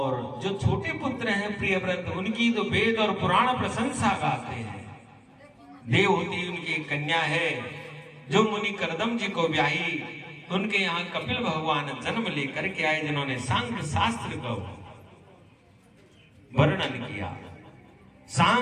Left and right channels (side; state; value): both; identical; correlation 1.00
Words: जो छोटे पुत्र हैं प्रियव्रत, उनकी तो वेद और पुराण प्रशंसा गाते हैं। देवहूति उनकी एक कन्या है जो मुनि करदम जी को ब्याही। उनके यहाँ कपिल भगवान जन्म लेकर के आए, जिन्होंने सांख्य शास्त्र का वर्णन किया।